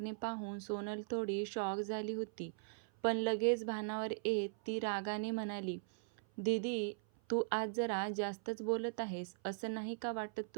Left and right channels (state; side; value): silent; left; 51 dB below the other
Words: पाहून सोनल थोडी शॉक झाली होती. पण लगेच भानावर येत ती रागाने म्हणाली, "दीदी, तू आज जरा जास्तच बोलत आहेस. असं नाही का वाटत